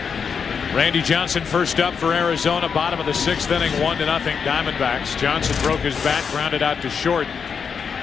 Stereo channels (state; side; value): quieter; right; 6.3 dB